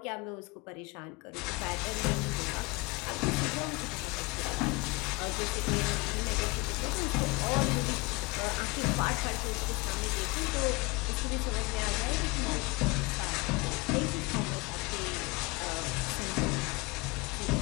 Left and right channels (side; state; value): right; quieter; 25.9 dB